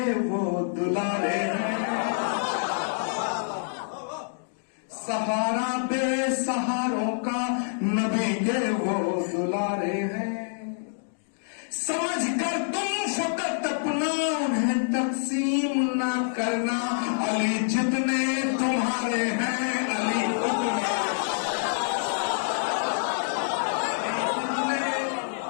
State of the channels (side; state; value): right; silent; digital silence